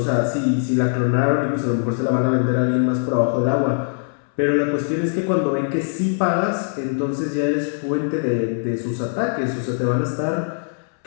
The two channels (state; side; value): silent; right; 64 dB below the other